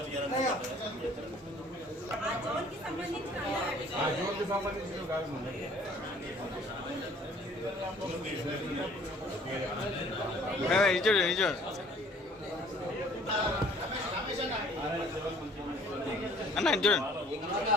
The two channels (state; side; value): normal; both; correlation 0.55